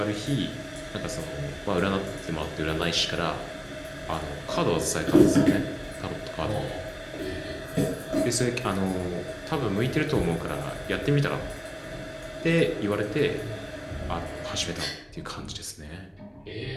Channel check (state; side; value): identical; both; correlation 1.00